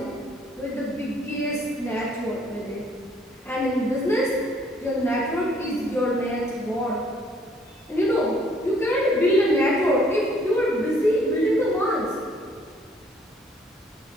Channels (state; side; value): normal; both; correlation 0.62